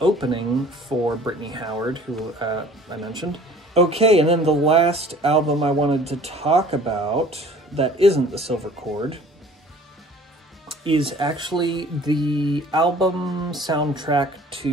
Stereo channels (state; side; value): normal; both; correlation 0.50